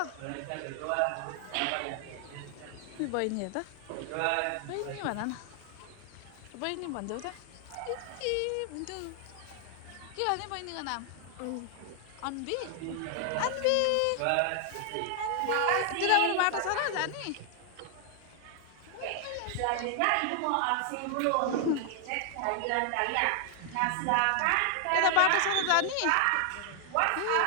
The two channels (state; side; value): different; both; correlation 0.00